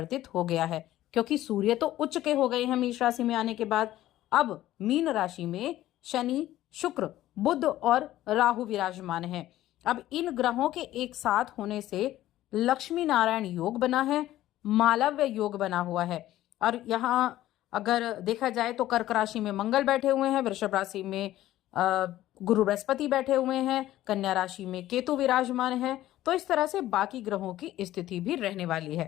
हो गया है, क्योंकि सूर्य तो उच्च के हो गए हैं मेष राशि में आने के बाद। अब मीन राशि में शनि, शुक्र, बुध और राहु विराजमान हैं। अब इन ग्रहों के एक साथ होने से लक्ष्मी नारायण योग बना है, मालव्य योग बना हुआ है। और यहाँ अगर देखा जाए तो कर्क राशि में मंगल बैठे हुए हैं, वृषभ राशि में गुरु बृहस्पति बैठे हुए हैं, कन्या राशि में केतु विराजमान है। तो इस तरह से बाकी ग्रहों की स्थिति भी रहने वाली है।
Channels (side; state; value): right; quieter; 14.3 dB